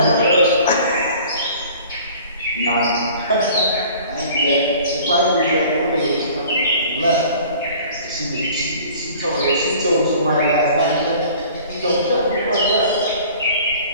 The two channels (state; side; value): inverted; both; correlation -0.47